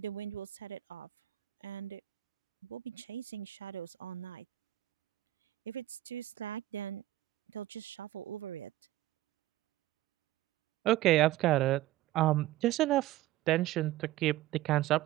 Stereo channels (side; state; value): left; quieter; 15.3 dB